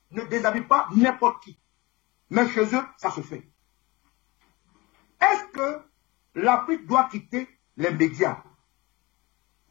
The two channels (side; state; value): right; quieter; 23.1 dB